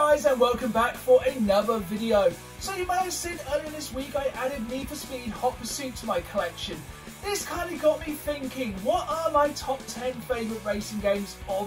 guys, and welcome back for another video. So you may have seen earlier this week I added Need for Speed Hot Pursuit to my collection. This kind of got me thinking, what are my top 10 favourite racing games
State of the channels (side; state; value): both; identical; correlation 1.00